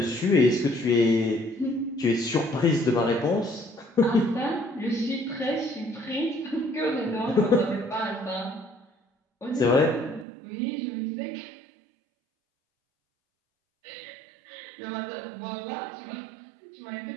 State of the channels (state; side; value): drops out; left; at 10.2 s